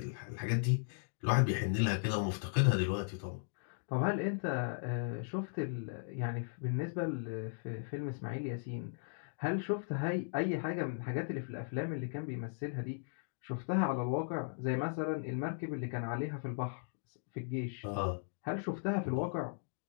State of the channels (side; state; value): right; silent; digital silence